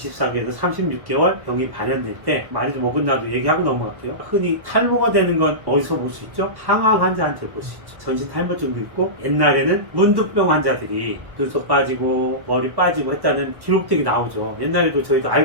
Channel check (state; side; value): late; left; 1.1 ms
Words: 36개월 병이 발현될 때 많이도 먹은 나도 얘기하고 넘어갈게요. 흔히 탈모가 되는 건 어디서 볼 수 있죠? 항암 환자한테 볼 수 있죠. 전신 탈모증도 있고 옛날에는 문두병 환자들이 눈썹 빠지고 머리 빠지고 했다는 기록들이 나오죠. 옛날에도 저희도